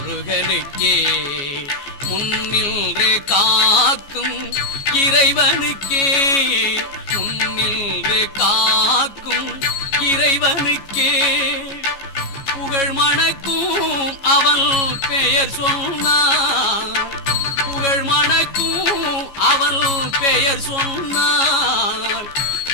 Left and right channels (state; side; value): late; right; 14 ms